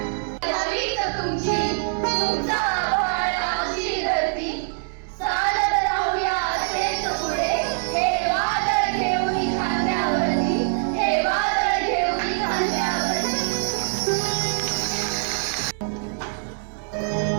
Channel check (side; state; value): left; silent; digital silence